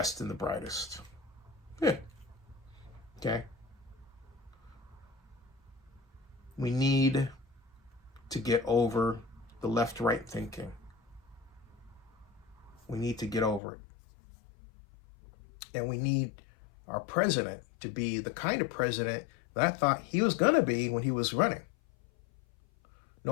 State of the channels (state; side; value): drops out; right; at 13.6 s